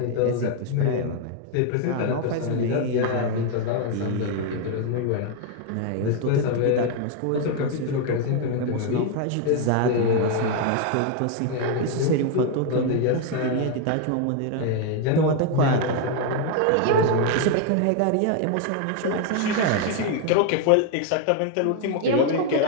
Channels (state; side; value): different; both; correlation 0.01